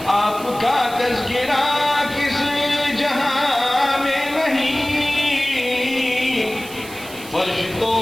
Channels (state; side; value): noise; right; hiss, 16 dB below the sound